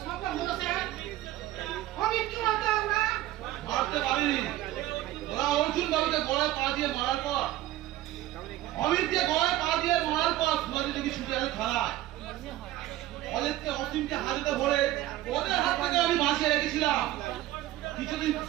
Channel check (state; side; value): quieter; left; 15.1 dB